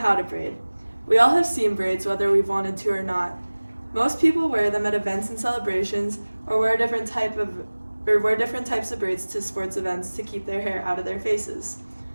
to braid. We all have seen braids whether we've wanted to or not. Most people wear them at events and celebrations or wear different types of braids to sports events to keep their hair out of their faces.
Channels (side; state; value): both; inverted; correlation -1.00